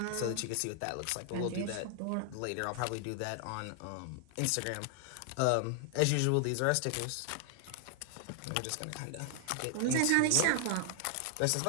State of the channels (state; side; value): different; both; correlation 0.00